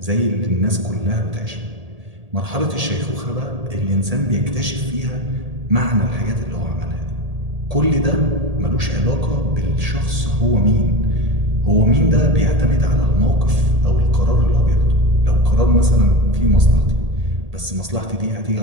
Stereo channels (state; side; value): late; left; 1.8 ms